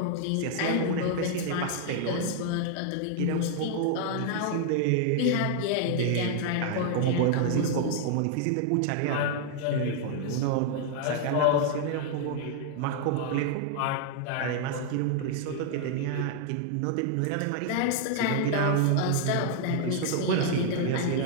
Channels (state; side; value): different; both; correlation 0.00